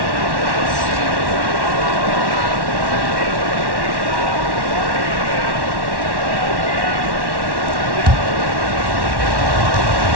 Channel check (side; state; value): left; late; 1.1 ms